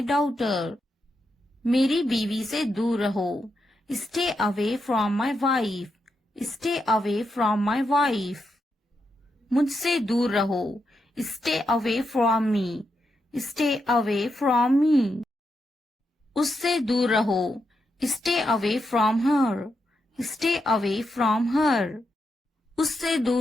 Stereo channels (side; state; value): both; normal; correlation 0.84